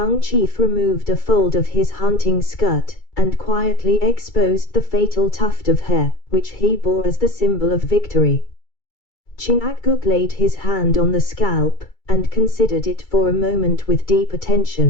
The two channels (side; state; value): right; late; 2.3 ms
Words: chief removed a fold of his hunting skirt, and quietly exposed the fatal tuft of hair, which he bore as the symbol of victory. Chingachgook laid his hand on the scalp, and considered it for a moment with deep